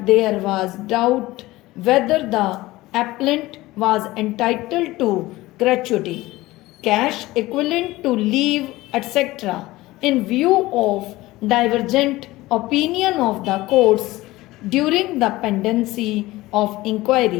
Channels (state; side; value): quieter; right; 18.5 dB